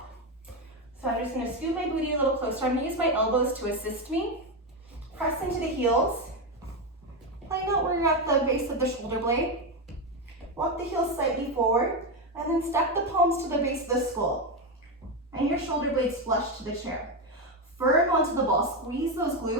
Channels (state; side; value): normal; both; correlation 0.10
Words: So I'm just gonna scoot my booty a little closer. I'm gonna use my elbows to assist me. Press into the heels. Find out where you're at the base of the shoulder blade. Walk the heels slightly forward, and then stack the palms to the base of the skull. And your shoulder blades flush to the chair. Firm onto the ball, squeeze those